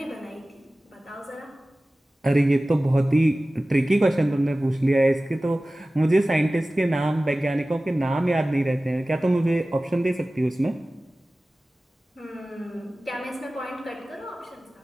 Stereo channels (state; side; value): normal; both; correlation 0.97